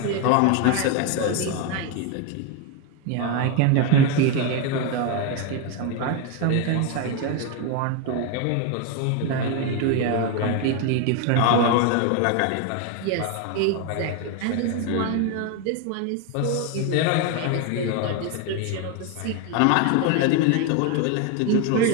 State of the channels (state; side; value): different; both; correlation 0.02